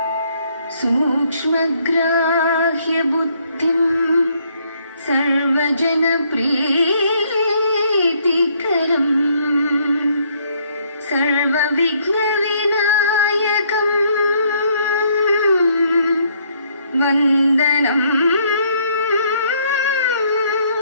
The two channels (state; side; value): inverted; both; correlation -0.67